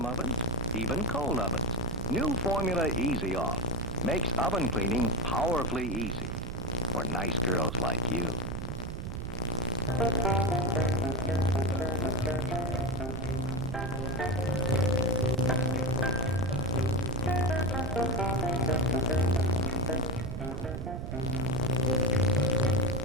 ovens, even cold ovens. New formula Easy Off makes oven cleaning powerfully easy for nice girls like you.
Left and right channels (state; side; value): noise; right; rumble, 6 dB below the sound